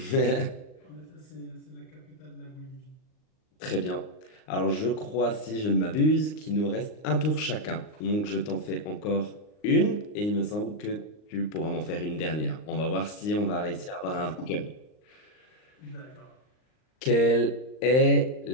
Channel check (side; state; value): right; late; 39 ms